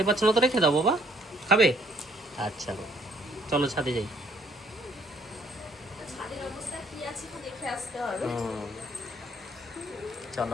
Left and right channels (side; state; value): both; normal; correlation 0.64